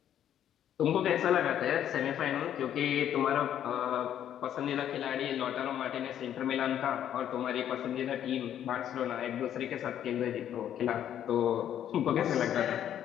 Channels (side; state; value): right; quieter; 10.4 dB